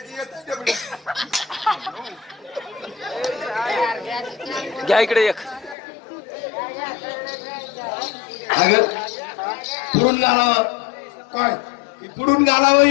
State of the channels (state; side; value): drops out; right; at 5.8 s